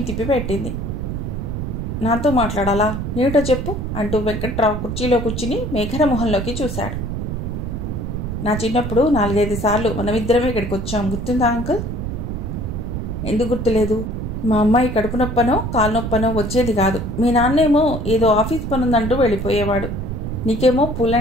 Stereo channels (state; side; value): noise; right; rumble, 4 dB below the sound